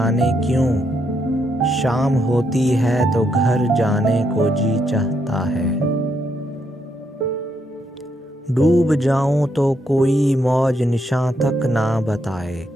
क्यों, शाम होती है तो घर जाने को जी चाहता है। डूब जाऊं तो कोई मौज निशां तक ना बताए,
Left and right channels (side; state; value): both; normal; correlation 0.77